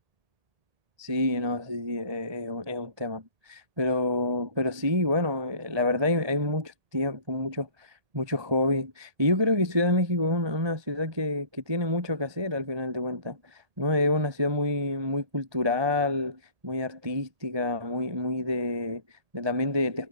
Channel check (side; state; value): left; late; 1.8 ms